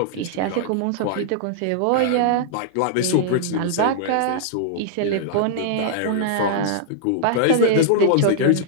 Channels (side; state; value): both; different; correlation -0.01